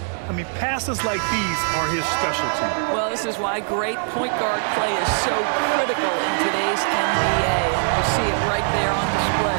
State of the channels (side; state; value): left; silent; 64 dB below the other